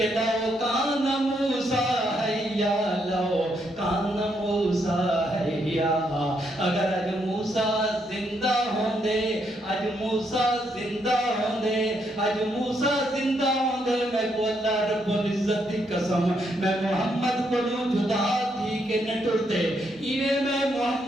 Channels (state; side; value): normal; both; correlation 0.76